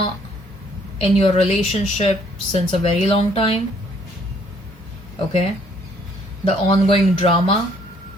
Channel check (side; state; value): both; normal; correlation 0.64